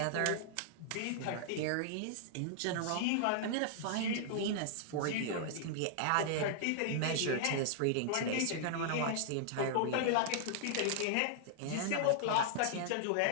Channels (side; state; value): both; different; correlation -0.01